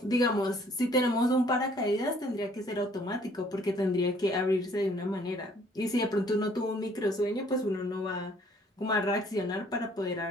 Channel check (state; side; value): normal; both; correlation 0.60